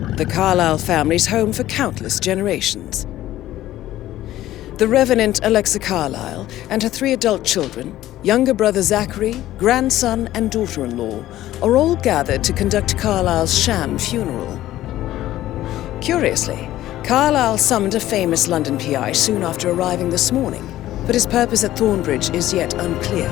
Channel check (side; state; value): right; quieter; 14.3 dB